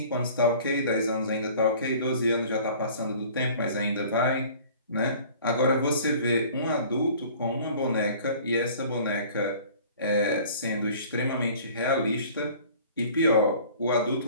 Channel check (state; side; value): inverted; both; correlation -0.48